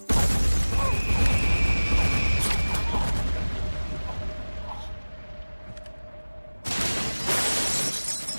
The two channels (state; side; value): inverted; both; correlation -1.00